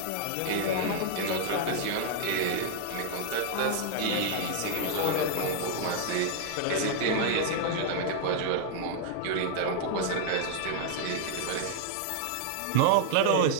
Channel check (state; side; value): different; both; correlation -0.01